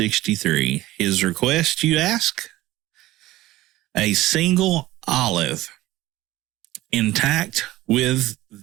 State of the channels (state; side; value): quieter; left; 16.9 dB